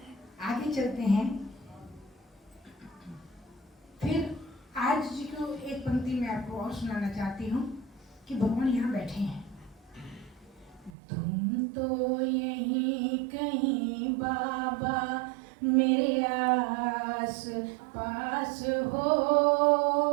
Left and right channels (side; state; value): left; drops out; at 10.9 s